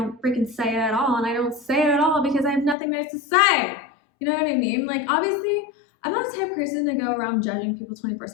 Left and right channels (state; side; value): drops out; right; at 2.8 s